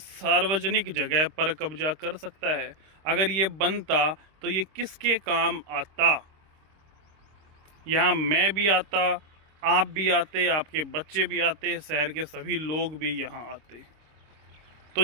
जगह पर कब्जा कर सकता है? अगर ये बनता तो ये किसके काम आता? यहाँ मैं भी आता, आप भी आते, आपके बच्चे भी आते, शहर के सभी लोग भी यहाँ आते। तो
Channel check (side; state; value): left; late; 26 ms